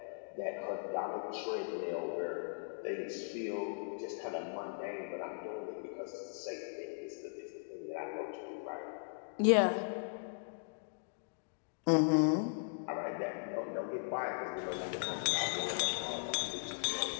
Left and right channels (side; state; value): right; silent; digital silence